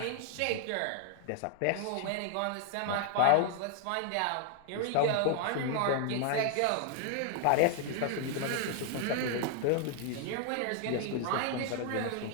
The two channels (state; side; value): different; both; correlation 0.00